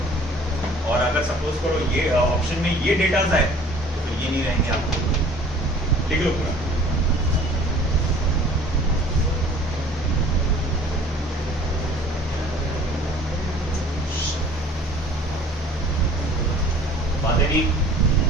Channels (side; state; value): both; normal; correlation 0.49